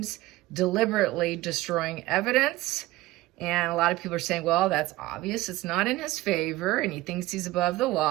deliberately destroying evidence. And a lot of people are saying, well, that's obvious. It's not in his favor, and he thinks he's above the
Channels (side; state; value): left; quieter; 18.0 dB